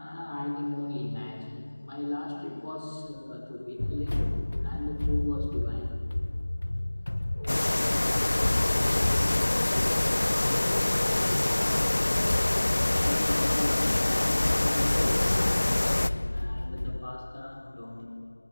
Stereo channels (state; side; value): inverted; both; correlation -1.00